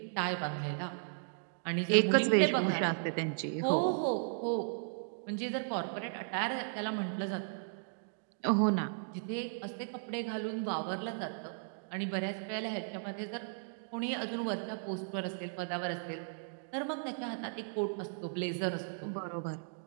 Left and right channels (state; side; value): silent; left; digital silence